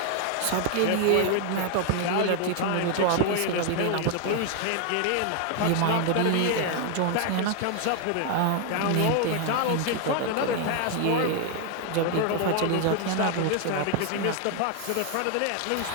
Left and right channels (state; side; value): different; both; correlation 0.00